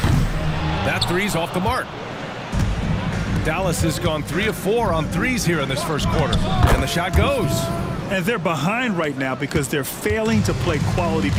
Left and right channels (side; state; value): both; identical; correlation 1.00